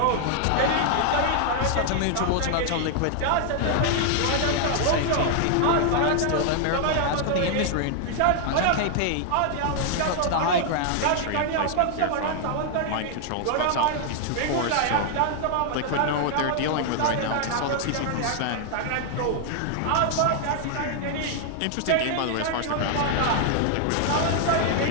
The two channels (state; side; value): different; both; correlation 0.00